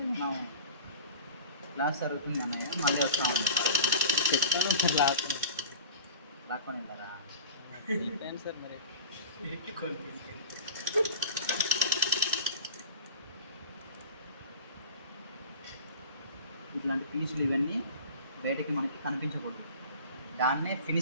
మనం, క్లాస్ జరుగుతుంది అన్నయ్య, మళ్ళీ వస్తామని చెప్పాను సార్. లాక్కొని వెళ్తారా? చెప్పాను సార్. మరి ఇట్లాంటి పీసులు ఇవన్నీ బయటకి మనకి కనిపించకూడదు. దాన్నే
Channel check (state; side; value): inverted; both; correlation -0.36